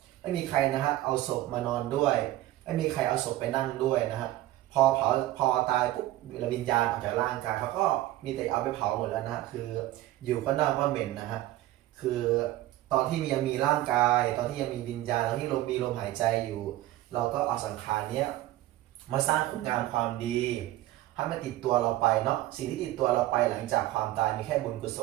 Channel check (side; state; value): left; quieter; 15.5 dB